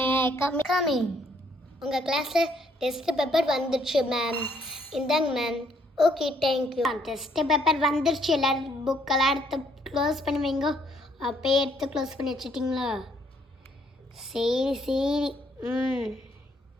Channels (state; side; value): normal; both; correlation 0.68